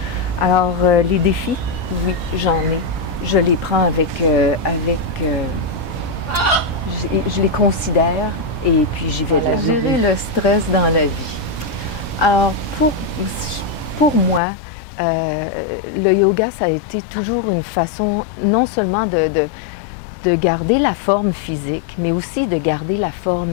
Alors, les défis, oui, j'en ai. Je les prends je les considère et puis j'y vais de l'avant. Gérer le stress dans la vie. Alors, pour moi, le yoga, ça a été toujours une façon non seulement de garder la forme physique, mais aussi de garder la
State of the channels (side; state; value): right; drops out; at 14.4 s